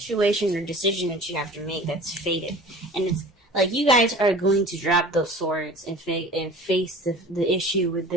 or decision that you have to make that's fated. And it's like you guys are going to drop those swords and face the issue with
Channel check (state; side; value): normal; both; correlation 0.42